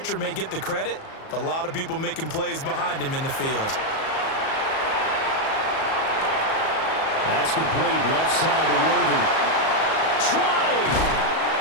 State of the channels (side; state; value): right; late; 37 ms